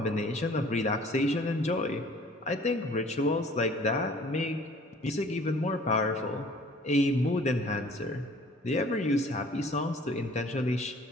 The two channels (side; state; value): both; normal; correlation 0.52